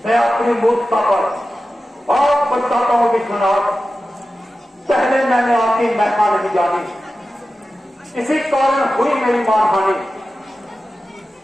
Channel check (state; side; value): normal; both; correlation 0.94